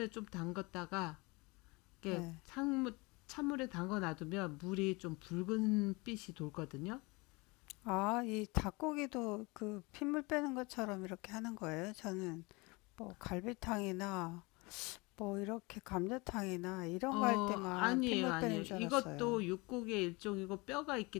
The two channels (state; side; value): quieter; right; 26.1 dB